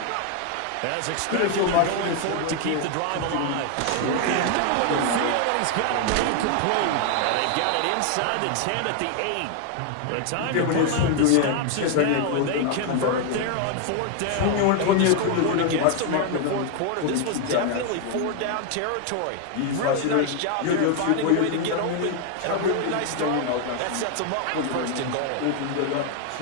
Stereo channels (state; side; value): different; both; correlation 0.01